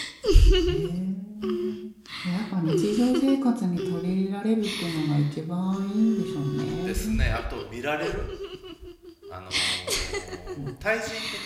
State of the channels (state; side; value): identical; both; correlation 1.00